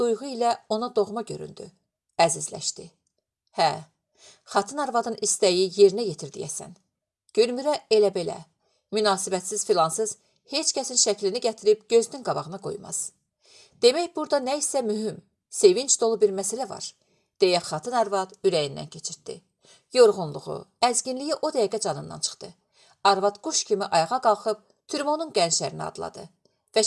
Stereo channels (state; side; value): identical; both; correlation 1.00